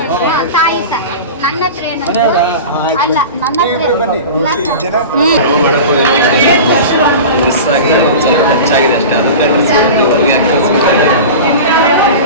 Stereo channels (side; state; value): both; inverted; correlation -0.31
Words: ಸರ್, ನನ್ನ ಹತ್ರ ಅಲ್ಲ, ನನ್ನ ಹತ್ರ ಮಿಸ್ ಆಗಿ ಒಂದು ಸ್ವಲ್ಪ ಹೆಚ್ಚಾಗಿದೆ ಅಷ್ಟೇ.